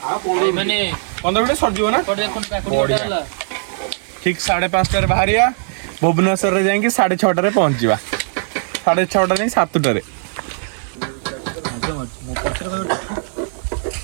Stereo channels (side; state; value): left; silent; digital silence